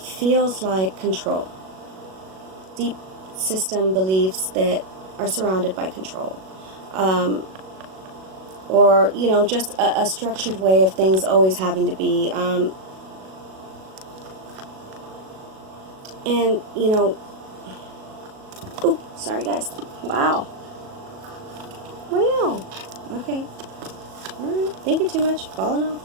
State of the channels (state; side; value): late; left; 37 ms